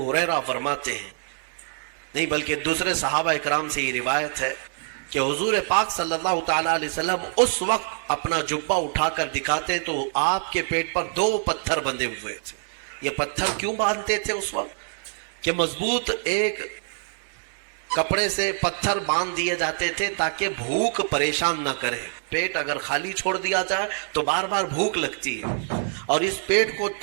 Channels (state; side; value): silent; left; digital silence